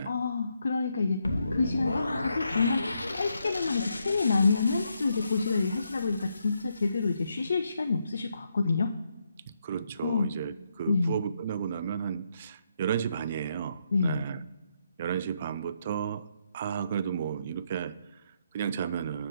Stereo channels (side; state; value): both; inverted; correlation -0.78